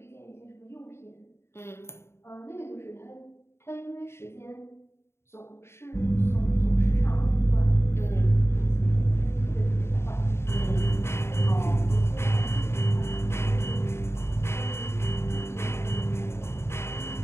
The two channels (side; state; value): right; late; 0.12 ms